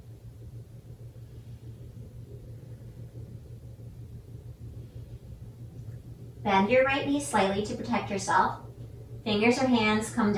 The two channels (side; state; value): both; identical; correlation 1.00